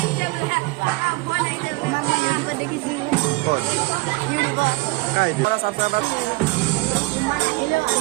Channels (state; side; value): quieter; left; 23.0 dB